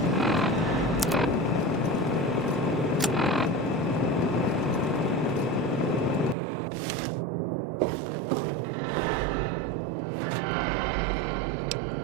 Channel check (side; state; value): left; drops out; at 6.4 s